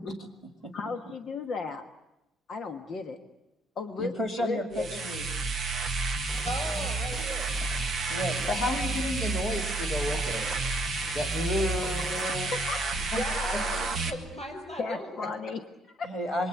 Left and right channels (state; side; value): normal; both; correlation 0.66